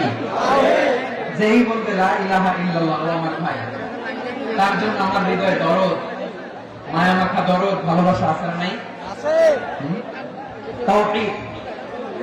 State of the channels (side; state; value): both; identical; correlation 1.00